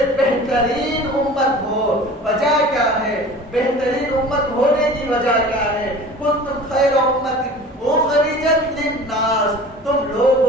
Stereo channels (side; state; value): both; normal; correlation 0.41